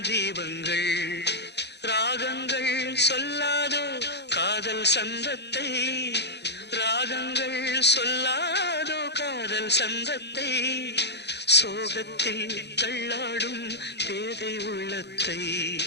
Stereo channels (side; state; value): right; late; 0.49 ms